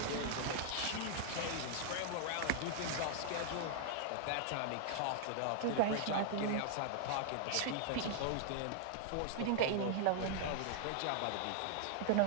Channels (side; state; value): both; different; correlation -0.01